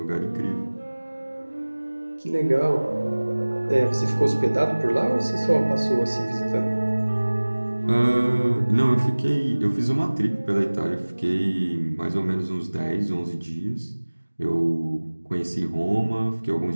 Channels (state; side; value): inverted; both; correlation -1.00